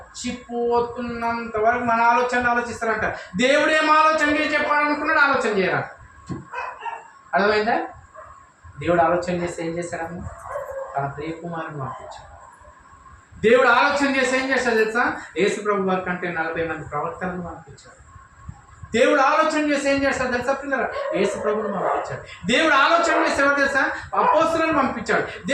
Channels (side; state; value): both; identical; correlation 1.00